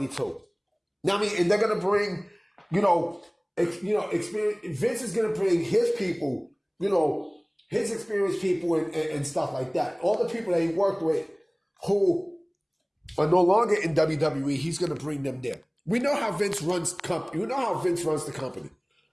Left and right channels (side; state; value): both; identical; correlation 1.00